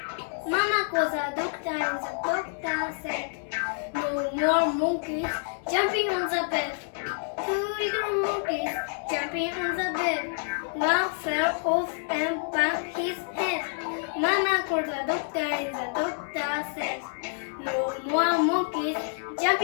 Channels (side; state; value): right; silent; 59 dB below the other